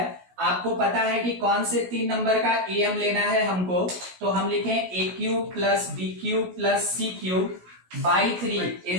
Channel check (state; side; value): late; left; 16 ms